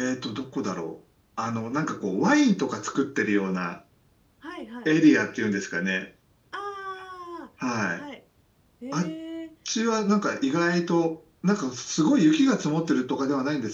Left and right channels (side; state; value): both; identical; correlation 1.00